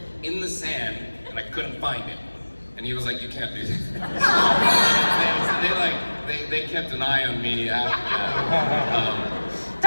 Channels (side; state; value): both; inverted; correlation -1.00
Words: in the sand and I couldn't find it? And he was like, you can't do that. they kept an eye on me after that.